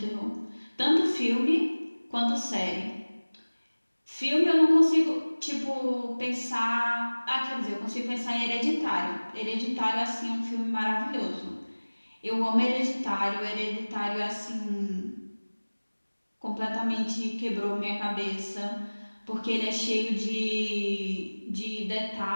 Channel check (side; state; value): both; inverted; correlation -1.00